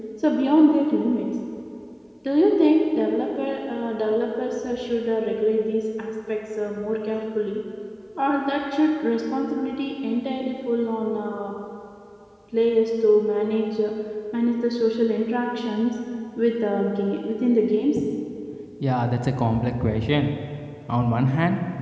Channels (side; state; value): both; identical; correlation 1.00